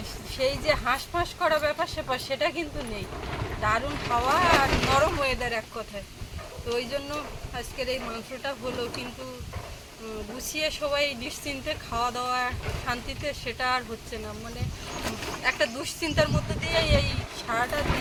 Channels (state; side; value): identical; both; correlation 1.00